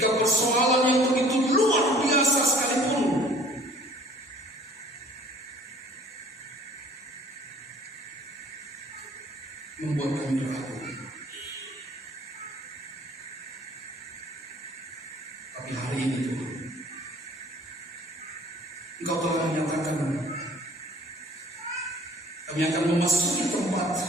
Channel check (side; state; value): both; normal; correlation 0.52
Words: persoalan yang begitu luar biasa sekalipun, membuat kami ragu. Tapi hari ini Tuhan, Engkau telah menyatakan kami akan memasuki